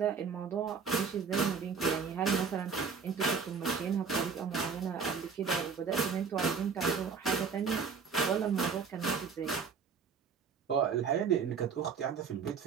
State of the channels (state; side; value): quieter; left; 5.9 dB